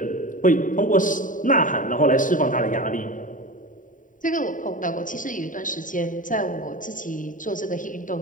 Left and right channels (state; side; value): late; right; 0.38 ms